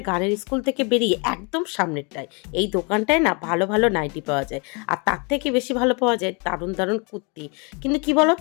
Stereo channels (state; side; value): quieter; right; 32.6 dB